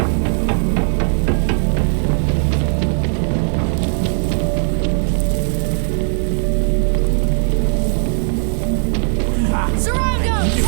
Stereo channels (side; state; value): left; silent; 57 dB below the other